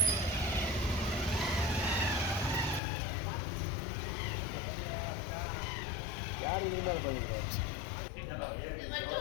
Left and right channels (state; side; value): drops out; right; at 2.8 s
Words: ಯಾರು ಇದು ಮಾಡ್ಕೊಂಡಿದ್ರು